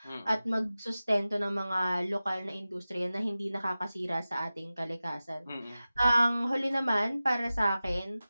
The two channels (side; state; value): both; inverted; correlation -0.95